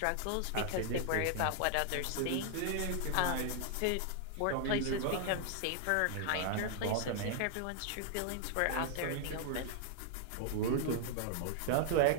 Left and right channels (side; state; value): both; different; correlation 0.00